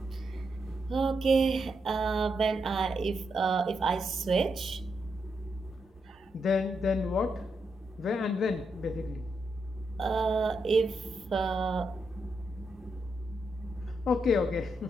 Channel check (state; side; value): normal; both; correlation 0.82